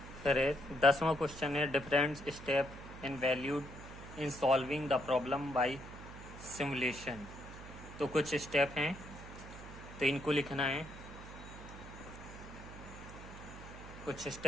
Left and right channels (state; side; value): noise; right; hum, 13 dB below the sound